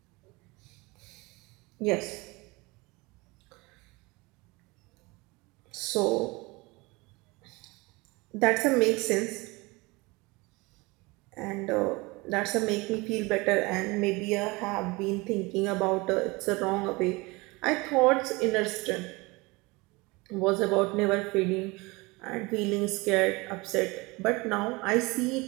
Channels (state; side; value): quieter; left; 24.2 dB